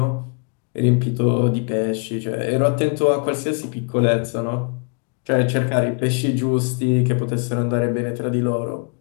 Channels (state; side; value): quieter; right; 38.0 dB